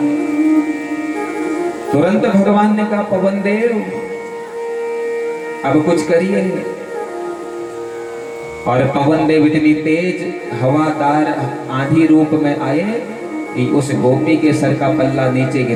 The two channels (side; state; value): both; identical; correlation 1.00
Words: तुरंत भगवान ने कहा पवन देव अब कुछ करिए। और पवन देव इतनी तेज हवादार आंधी रूप में आए कि उस गोपी के सर का पल्ला नीचे